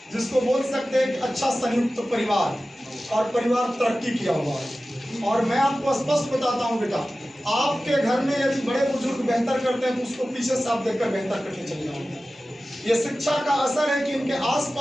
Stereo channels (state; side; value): normal; both; correlation 0.95